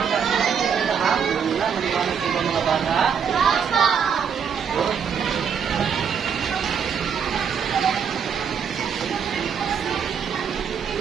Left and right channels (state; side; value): quieter; left; 7.1 dB